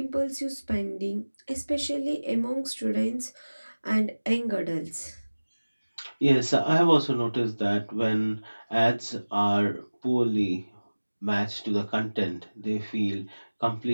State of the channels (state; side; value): inverted; both; correlation -1.00